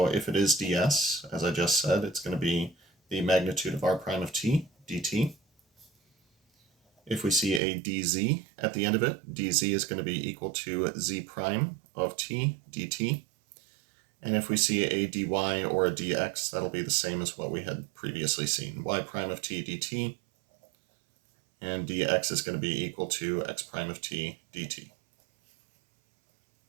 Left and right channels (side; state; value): left; drops out; at 7.6 s